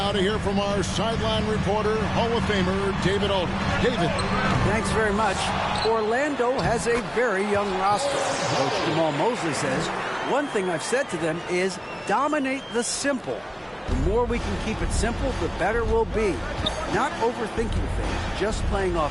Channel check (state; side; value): identical; both; correlation 1.00